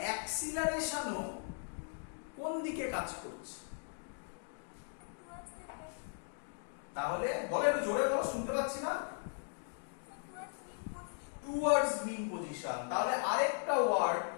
অ্যাক্সিলারেশনও কোন দিকে কাজ করছে? তাহলে বলো একটু জোরে বলো, শুনতে পাচ্ছি না। Towards mean position. তাহলে আরেকটা ওয়ার্ড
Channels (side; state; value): right; silent; digital silence